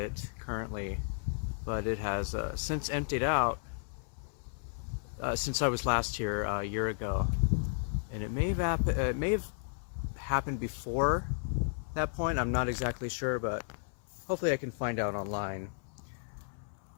currently, but it has since emptied out since I was last here a year ago, and it may have happened before that point. I'm not exactly sure, but hopefully I can find out online.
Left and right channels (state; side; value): silent; right; 55 dB below the other